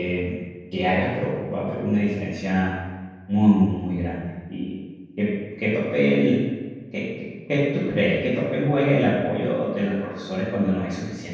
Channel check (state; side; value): identical; both; correlation 1.00